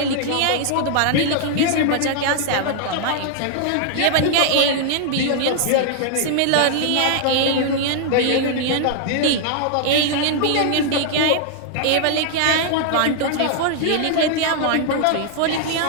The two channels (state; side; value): different; both; correlation 0.00